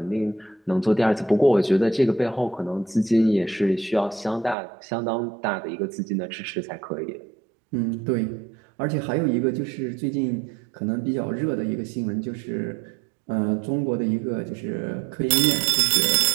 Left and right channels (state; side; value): drops out; left; at 4.5 s